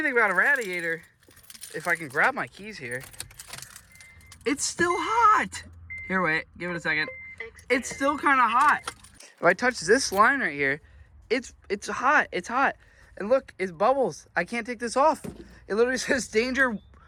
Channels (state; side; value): identical; both; correlation 1.00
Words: about a radiator, if I can grab my keys here, it's still hot. Here, wait, give it a second. It's still kind of hot. If I touch this line right here, it's hot, it's hot. And look, it's bubbles. I can't take this off. It literally says danger.